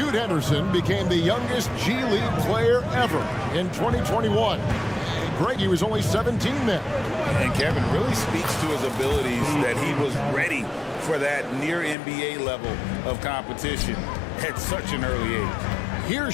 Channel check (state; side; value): drops out; right; at 12.0 s